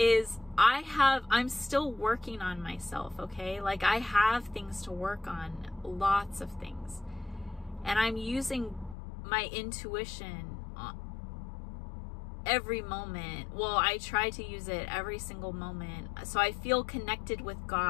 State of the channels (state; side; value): drops out; right; at 9.0 s